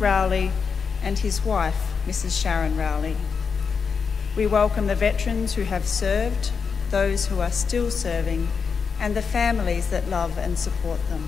Rowley, and his wife, Mrs. Sharon Rowley. We welcome the veterans who have served, those who are still serving, and the families that love and support them.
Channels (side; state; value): right; quieter; 5.8 dB